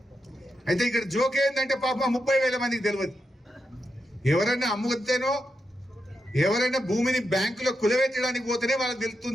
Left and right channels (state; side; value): normal; both; correlation 0.86